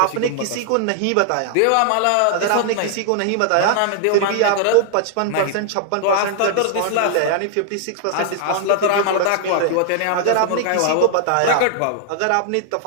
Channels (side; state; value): both; different; correlation 0.00